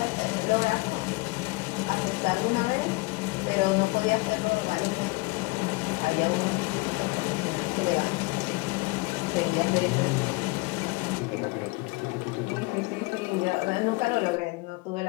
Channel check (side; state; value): right; quieter; 24.9 dB